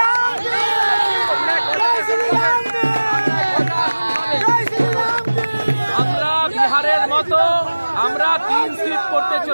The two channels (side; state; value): both; inverted; correlation -1.00